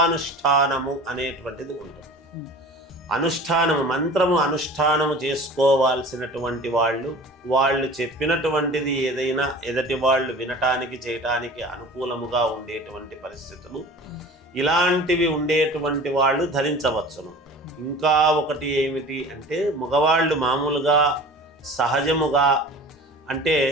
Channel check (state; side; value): normal; both; correlation 0.40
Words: అనేటువంటిది ఉంటుంది. అనుష్ఠానము, మంత్రము అనుష్ఠానము చేసుకోవాల్సినటువంటి వాళ్ళు చెప్పినటువంటిది ఏదైనా ఎదటి వాళ్ళు వినటానికి చేయటానికి అనుకూలముగా ఉండేటువంటి పరిస్థితులు ఇలాంటివి ఉండేటువంటి వాళ్ళు ధరించవచ్చును. ఇంకా ఒకటి ఏమిటి అంటే, మగవాళ్ళు మామూలుగా సహజముగా అంటే